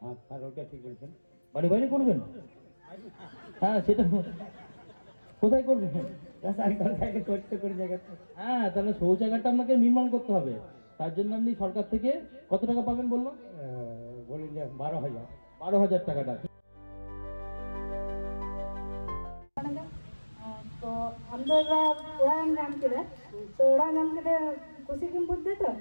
হ্যাঁ, ওটা ঠিক বলছেন। বাড়ি বাইরে করবেন? হ্যাঁ, সেটা কোথায় করবেন? হ্যাঁ, তাহলে শৌচাগারটা আপনাকে নির্মাণ করতে হবে। তার জন্য আপনি সরকার থেকে কত টাকা পাবেন বললো? বলি যে 12,000। 12,000 টাকাটা। तो हम लोग उड़ान नाम के तो उड़ान नाम के खुशी की बुद्ध तो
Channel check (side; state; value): both; inverted; correlation -1.00